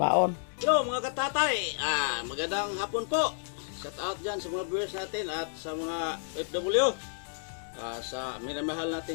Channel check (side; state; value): right; silent; 57 dB below the other